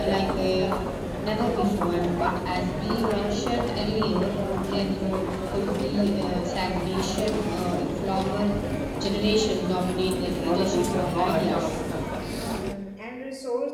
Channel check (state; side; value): identical; both; correlation 1.00